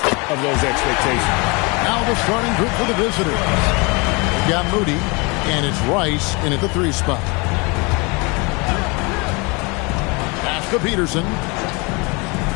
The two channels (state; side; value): quieter; right; 28.7 dB